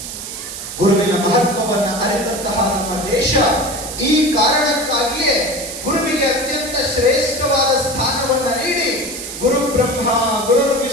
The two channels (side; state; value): right; noise; hiss, 9 dB below the sound